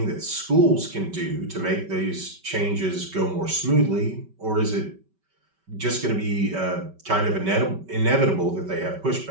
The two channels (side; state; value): left; late; 5.2 ms